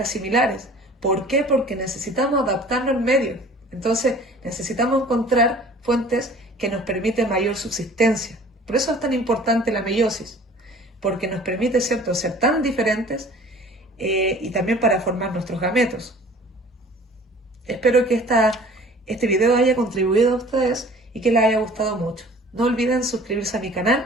similares. ¿Por qué? Porque necesitamos adaptarnos al medio. Entonces necesitamos encontrar fuentes que nos permiten mayor subsistencia. Por eso es tan importante la meiosis, porque nos permite, ¿cierto?, ser tan diferentes y también para formar nuestros gametos. Espero que este video haya contribuido a ustedes y que les haya gustado mucho. No olviden suscribirse a mi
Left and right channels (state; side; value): normal; both; correlation 0.48